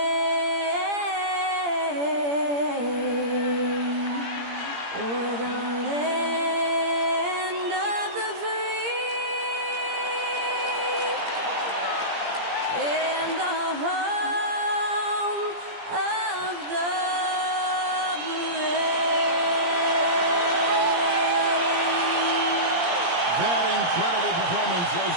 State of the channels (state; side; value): late; left; 17 ms